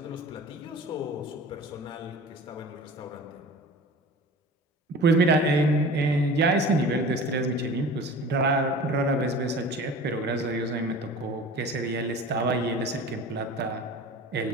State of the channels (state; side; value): normal; both; correlation 0.39